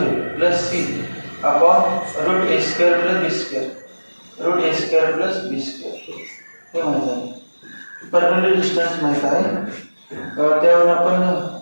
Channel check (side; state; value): both; inverted; correlation -1.00